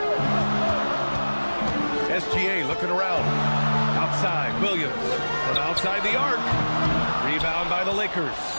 SGA looking around. Outside, Williams. From outside the arc. Rebound by the Lakers.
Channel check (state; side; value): inverted; both; correlation -1.00